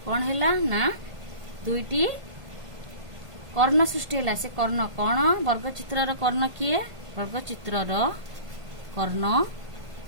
कौन है ना दुईटी कर्ण सृष्टि है। से कर्ण कौन वर्गचित्र कर्ण किए वर्गचित्र कर्ण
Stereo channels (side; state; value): left; late; 1.5 ms